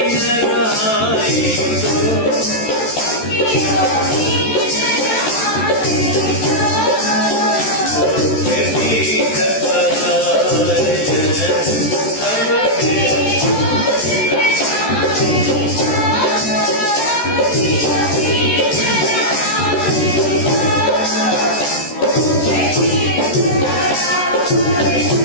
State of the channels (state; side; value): late; right; 14 ms